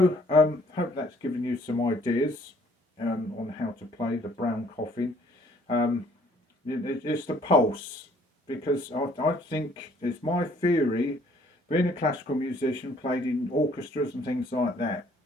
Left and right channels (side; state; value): both; normal; correlation 0.61